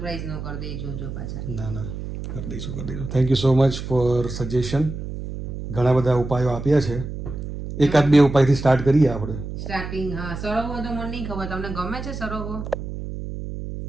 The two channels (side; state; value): right; noise; hum, 7 dB below the sound